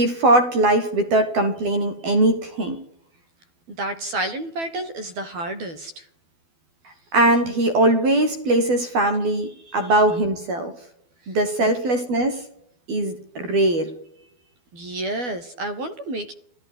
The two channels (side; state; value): left; late; 12 ms